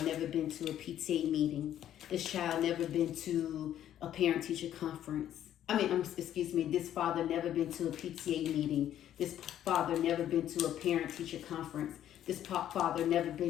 never been to a PTA meeting. This child never been to a parent-teacher conference. This father never been to a PTA meeting. This father never been to a parent-teacher conference. This father never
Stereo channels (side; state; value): right; quieter; 11.2 dB